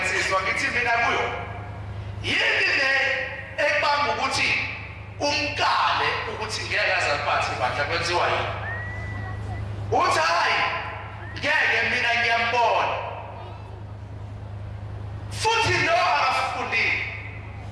ngithi mina kuyo yini le ekubanga ukuthi umkale ukuthi ngeke azaliphathe ibandla kwenziwa yini uthi hayi ngeke mina ngiyambona futhi lo akafundile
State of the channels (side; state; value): both; identical; correlation 1.00